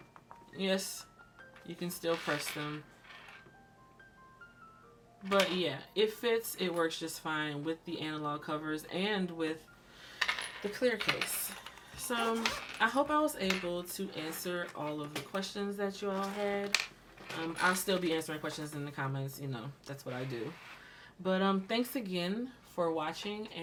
Yes, you can still press them. But yeah, it fits. It works just fine with the analog covers and with the clear case. So I hope I was able to answer all of the questions that you all had. I'll still be answering questions in the comments, you know, that's what I do. But thanks again for watching,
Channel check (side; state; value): both; identical; correlation 1.00